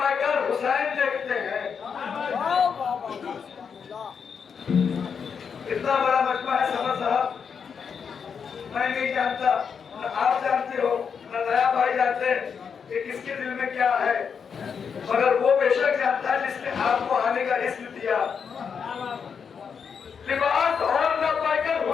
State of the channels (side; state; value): right; quieter; 6.5 dB